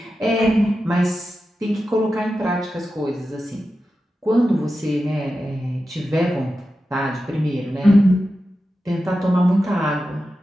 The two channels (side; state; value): both; normal; correlation 0.91